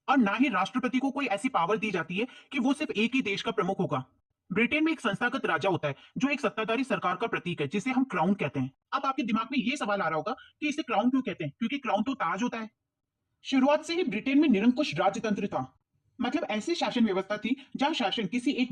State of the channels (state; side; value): identical; both; correlation 1.00